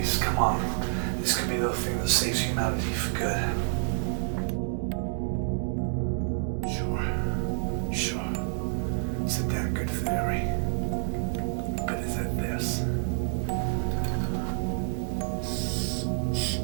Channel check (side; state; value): left; silent; 58 dB below the other